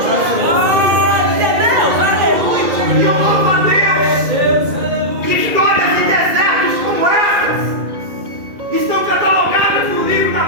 E eu louvo a Deus que histórias de desertos como essas estão catalogadas no livro da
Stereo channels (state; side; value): late; left; 2.2 ms